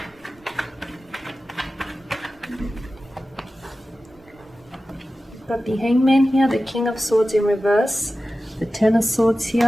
Got the Hangman here, the King of Swords in reverse, the Ten of Swords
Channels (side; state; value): both; normal; correlation 0.95